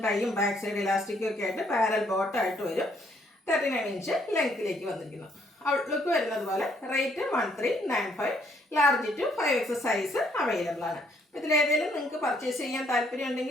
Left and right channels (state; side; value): normal; both; correlation 0.68